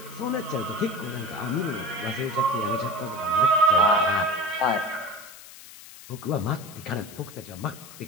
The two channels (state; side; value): noise; left; hiss, 17 dB below the sound